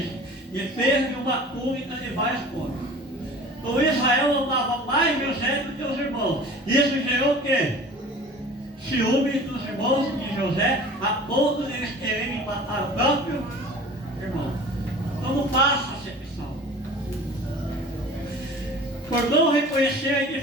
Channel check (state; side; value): normal; both; correlation 0.42